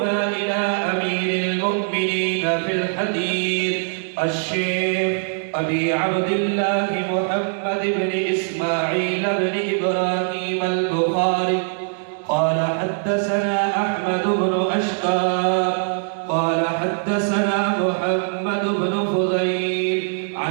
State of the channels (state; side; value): silent; left; digital silence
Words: إلى أمير المؤمنين في الحديث الشيخ أبي عبد الله محمد بن إسماعيل بن إبراهيم البخاري قال حدثنا أحمد بن أشقى قال حدثنا محمد بن فضيل